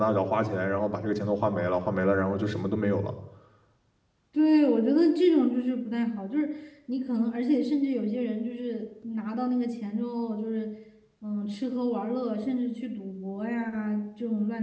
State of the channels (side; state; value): both; identical; correlation 1.00